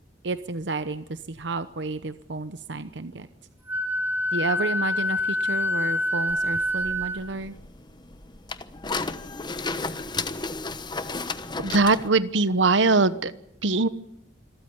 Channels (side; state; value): both; normal; correlation 0.24